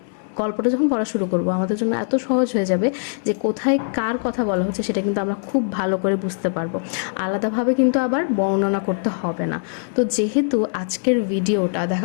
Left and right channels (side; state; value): right; silent; 61 dB below the other